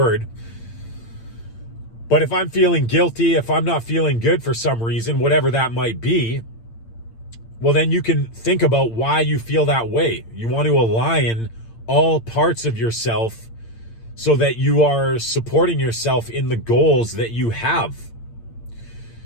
but if I'm feeling guilty, if I'm not feeling good for some reason, whatever that might be, well, then you can think about why you feel that way. You want to align all parts of yourself so that you are supporting yourself in the goals that you have.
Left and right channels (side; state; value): right; late; 8.8 ms